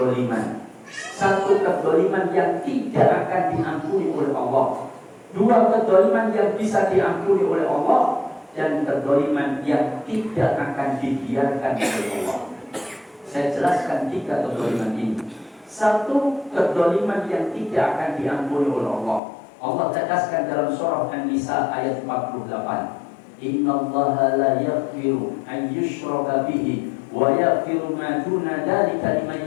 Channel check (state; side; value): drops out; right; at 19.2 s